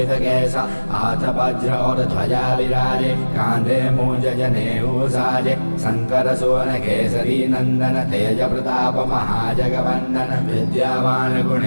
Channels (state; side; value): inverted; both; correlation -1.00